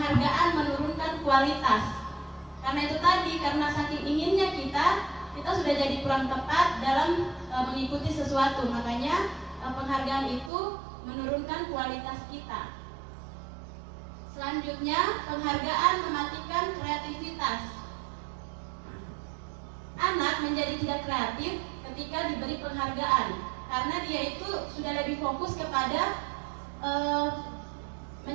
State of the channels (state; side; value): drops out; left; at 10.5 s